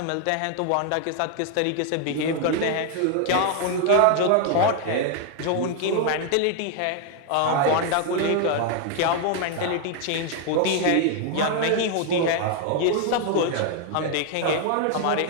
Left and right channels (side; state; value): both; different; correlation 0.00